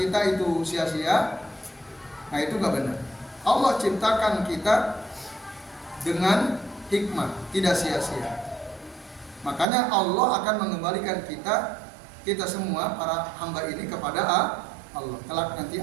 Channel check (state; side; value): drops out; left; at 9.7 s